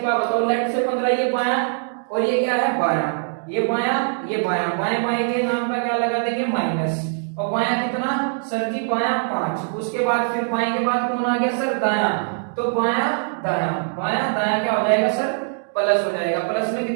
बात बताओ, लेफ्ट से 15 ये बायां, और ये क्या है बायां, ये बायां ये बायां, बाएं बाएं के नाम पर क्या लगा देंगे माइनस, और बायां कितना सर जी, बायां 5। उसके बाद फिर बाएं के बाद कौन आ गया सर, दायां, तो बायां दायां, बायां दायां क्या हो जाएगा सर, प्लस हो जाएगा, प्लस में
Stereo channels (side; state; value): left; silent; digital silence